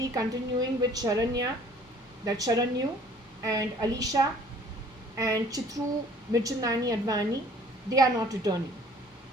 continuing with Sharanyu and Alisha and Chitru Mirchandani Advani. They are not returning.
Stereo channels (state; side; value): normal; both; correlation 0.54